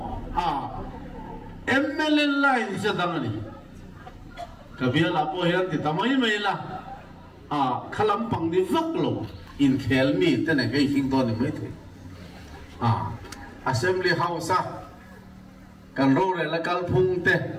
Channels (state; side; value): identical; both; correlation 1.00